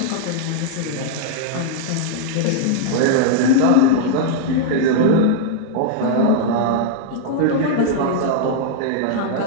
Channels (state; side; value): different; both; correlation -0.01